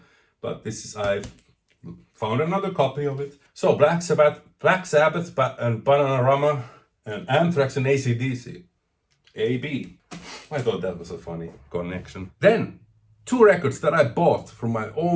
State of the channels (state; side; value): identical; both; correlation 1.00